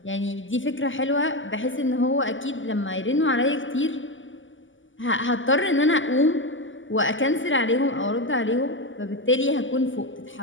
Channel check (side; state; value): right; late; 0.56 ms